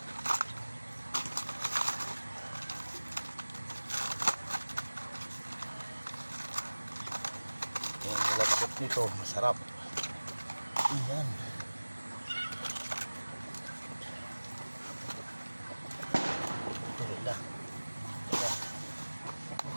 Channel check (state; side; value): inverted; both; correlation -1.00